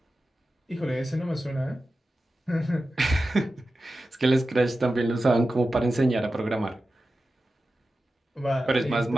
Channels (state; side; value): normal; both; correlation 0.93